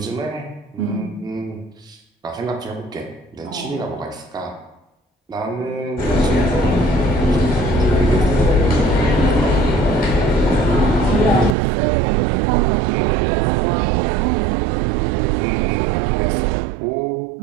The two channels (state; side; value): drops out; left; at 11.6 s